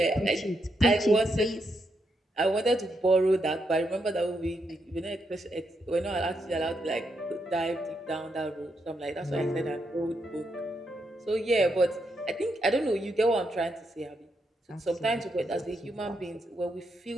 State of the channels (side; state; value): both; normal; correlation 0.81